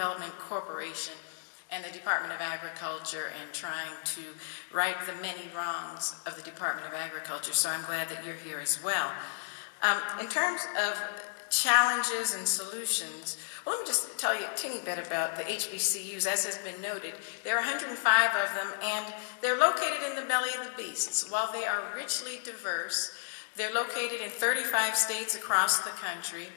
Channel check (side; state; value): right; silent; digital silence